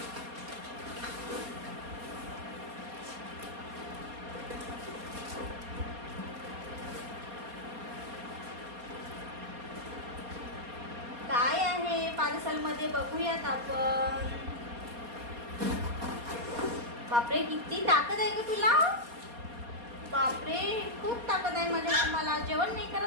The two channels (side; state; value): left; late; 4.2 ms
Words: काय आहे पार्सल मध्ये बघूयात आपण. बापरे, किती ताकद आहे ग तुला. बापरे, खूप ताकद आहे माझ्या. मला जेवण नाही